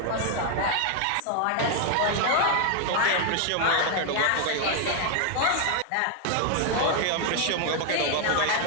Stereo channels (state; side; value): different; both; correlation 0.00